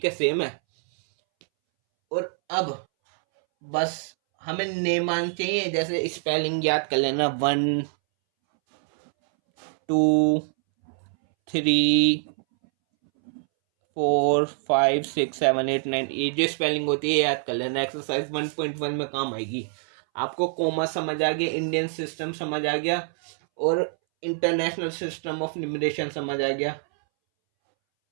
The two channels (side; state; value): left; silent; 62 dB below the other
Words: है, सेम है। और अब बस हमें नेमान चाहिए, जैसे स्पेलिंग याद कर लेना, 1 2 3 4 5 6 7 8 9, ये जो स्पेलिंग होती है याद कर लेना। एक्सरसाइज 1.1 में काम आएगी। आपको कोमा समझ आ गया, इंडियन सिस्टम समझ आ गया, और इंटरनेशनल सिस्टम ऑफ न्यूमरेशन समझ आ गया।